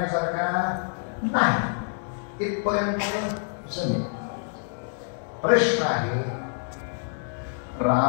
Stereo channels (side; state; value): right; silent; digital silence